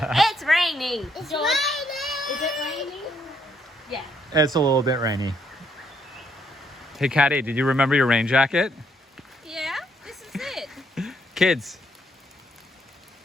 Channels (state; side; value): normal; both; correlation 0.72